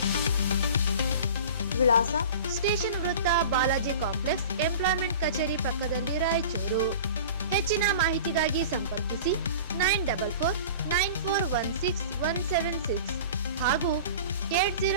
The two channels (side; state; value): both; inverted; correlation -0.38